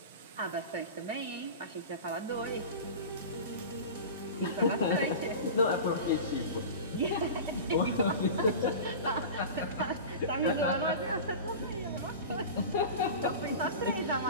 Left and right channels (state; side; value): inverted; both; correlation -0.32